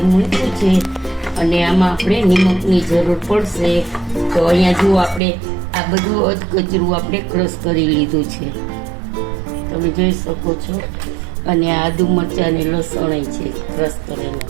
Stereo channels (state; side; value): drops out; left; at 5.2 s